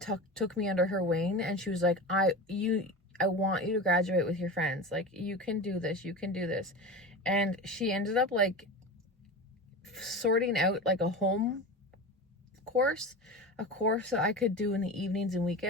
took me under her wing, and she was I want you to graduate with your friends. You can do this. You can do this. And she ended up sorting out a home course, a course that I could do in the evenings and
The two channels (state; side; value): normal; both; correlation 0.28